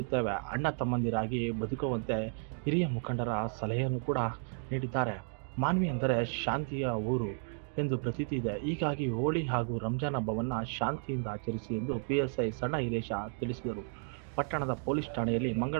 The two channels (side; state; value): left; silent; 56 dB below the other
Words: ಅಣ್ಣ ತಮ್ಮಂದಿರಾಗಿ ಬದುಕುವಂತೆ ಹಿರಿಯ ಮುಖಂಡರ ಸಲಹೆಯನ್ನು ಕೂಡ ನೀಡಿದ್ದಾರೆ. ಮಾನ್ವಿ ಅಂದರೆ ಶಾಂತಿಯ ಊರು ಎಂದು ಪ್ರತೀತಿ ಇದೆ. ಹೀಗಾಗಿ ಹೋಳಿ ಹಾಗೂ ರಂಜಾನ್ ಹಬ್ಬವನ್ನು ಶಾಂತಿಯಿಂದ ಆಚರಿಸಿ ಎಂದು ಪಿಎಸ್ಐ ಸಣ್ಣ ಹಿರೇಶ ತಿಳಿಸಿದರು. ಪಟ್ಟಣದ ಪೊಲೀಸ್ ಠಾಣೆಯಲ್ಲಿ